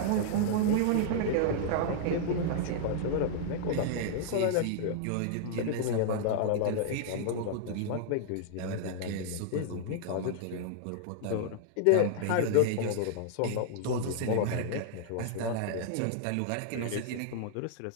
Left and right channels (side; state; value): both; different; correlation -0.01